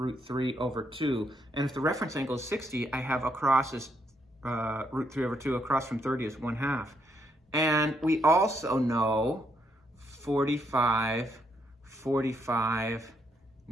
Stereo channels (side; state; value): both; normal; correlation 0.75